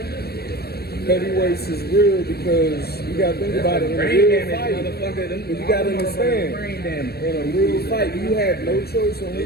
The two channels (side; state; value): right; late; 0.46 ms